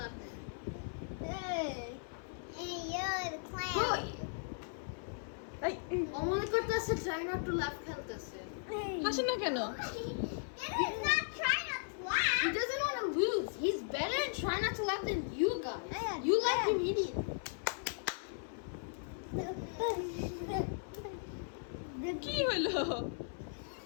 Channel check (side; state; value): right; silent; 53 dB below the other